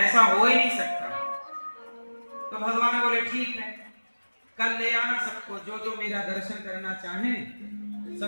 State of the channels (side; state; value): both; inverted; correlation -1.00